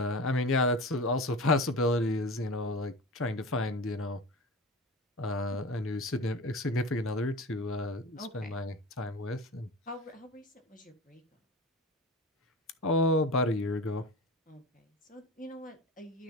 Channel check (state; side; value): normal; both; correlation 0.31